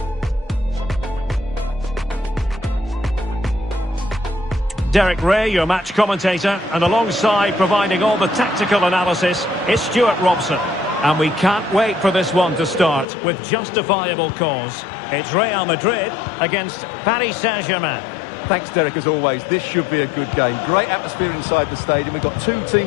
Derek Ray, your match commentator, and alongside providing all the tactical analysis is Stuart Robson. And we can't wait for this one to start with justifiable cause. It's Real Madrid against Paris Saint-Germain. Thanks, Derek, as always. This should be a good game. Great atmosphere inside the stadium. We've got two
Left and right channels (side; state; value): right; drops out; at 13.1 s